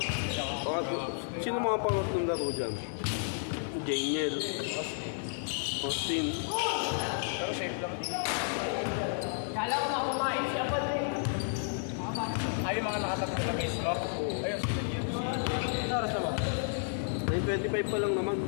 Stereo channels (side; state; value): right; silent; 56 dB below the other